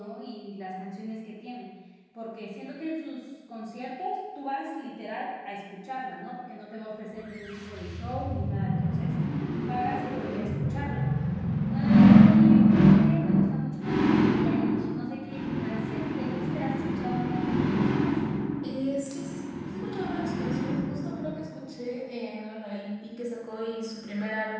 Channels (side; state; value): both; identical; correlation 1.00